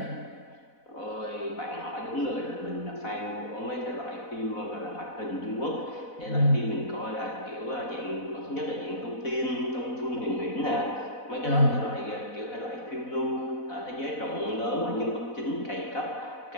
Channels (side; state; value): right; late; 4.1 ms